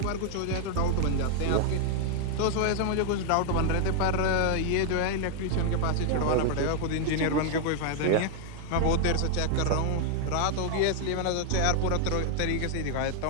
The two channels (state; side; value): different; both; correlation 0.00